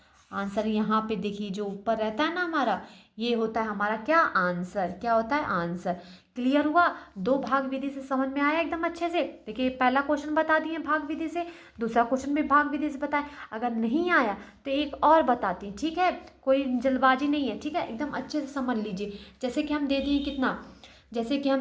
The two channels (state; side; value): identical; both; correlation 1.00